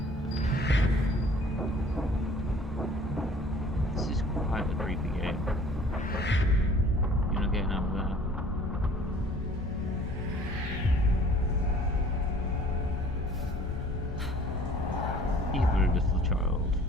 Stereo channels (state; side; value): normal; both; correlation 0.51